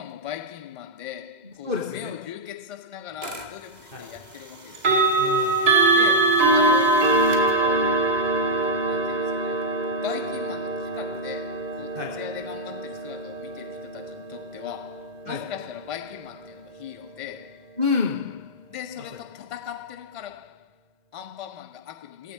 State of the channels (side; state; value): left; late; 2.0 ms